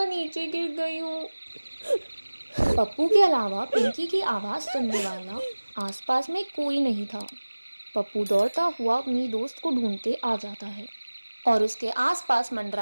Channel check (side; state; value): both; inverted; correlation -1.00